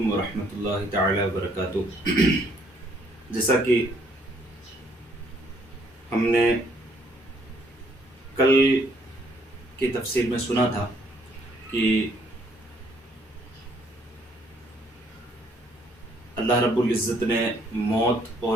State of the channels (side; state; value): both; normal; correlation 0.66